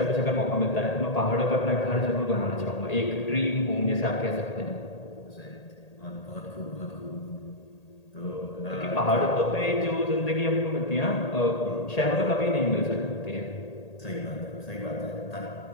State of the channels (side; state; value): right; late; 1.8 ms